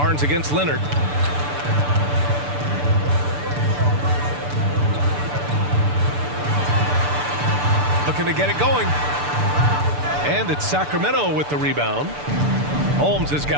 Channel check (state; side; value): late; left; 6.8 ms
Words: against Leonard. Looking to get it going. And it's Sacramento with the rebound. Holmes has